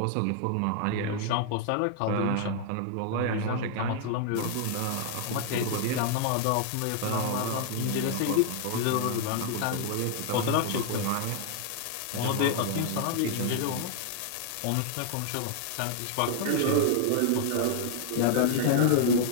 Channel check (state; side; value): different; both; correlation 0.00